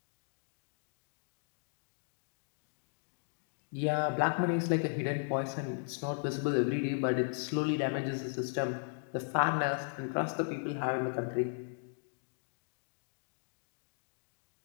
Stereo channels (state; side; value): silent; right; digital silence